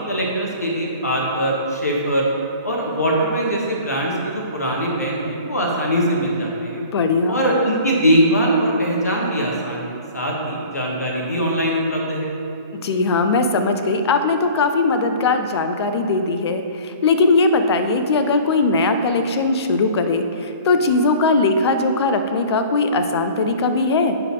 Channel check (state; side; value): inverted; both; correlation -0.45